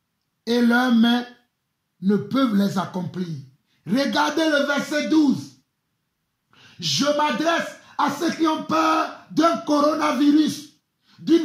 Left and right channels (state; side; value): identical; both; correlation 1.00